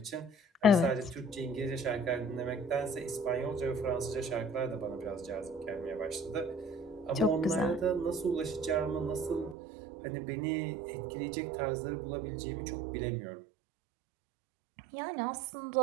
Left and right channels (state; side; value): drops out; left; at 9.6 s